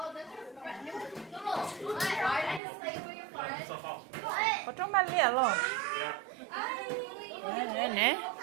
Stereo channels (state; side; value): drops out; left; at 2.6 s